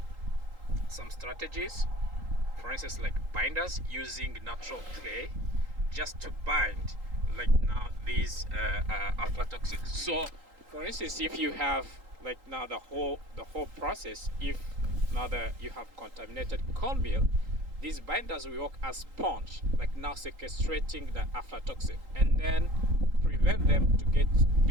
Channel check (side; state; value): left; late; 3.8 ms